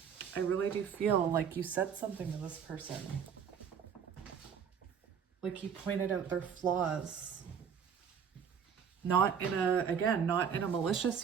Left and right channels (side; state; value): left; quieter; 7.3 dB